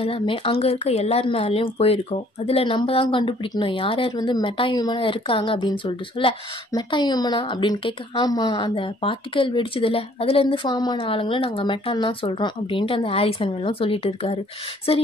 எல்லாமே அங்கே இருக்க எல்லார் மேலேயும் போயிருக்கோம். அதில் நம்ம தான் கண்டுபிடிக்கணும் யார் யார் வந்து மெட்டா ஹியூமனாக இருக்காங்க அப்படின்னு சொல்லிட்டு சொல்ல, மெட்டா ஹியூமனா அப்படின்னு கேட்க, ஆமாம் அந்த பார்ட்டிக்கல் வெடிச்சதில்ல அதுலேருந்து ஃபார்ம் ஆன ஆளுங்களை நாங்கள் மெட்டான்னு தான் சொல்கிறோம் அப்படின்ட்டு அந்த ஹாரிசன் வெல்லும் சொல்லிட்டு இருக்காரு. சரி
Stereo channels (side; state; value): both; normal; correlation 0.59